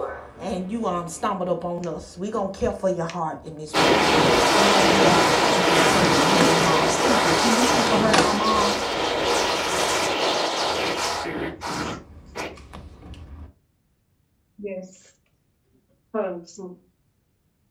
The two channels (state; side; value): identical; both; correlation 1.00